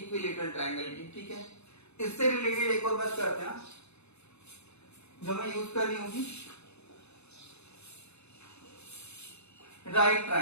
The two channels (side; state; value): right; late; 0.80 ms